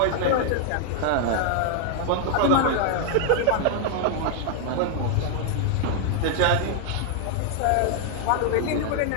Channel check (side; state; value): both; different; correlation 0.00